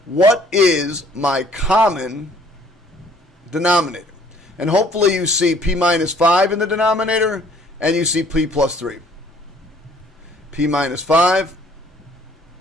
what is my common denominator. And hopefully you see p minus 5 in the denominator, and you see p plus 3. P minus 5,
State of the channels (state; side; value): normal; both; correlation 0.59